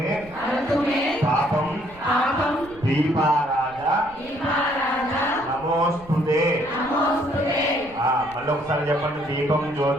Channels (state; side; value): noise; right; rumble, 22 dB below the sound